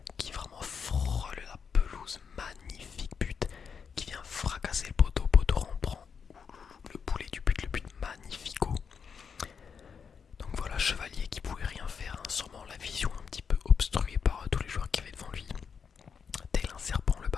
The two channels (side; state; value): right; quieter; 6.4 dB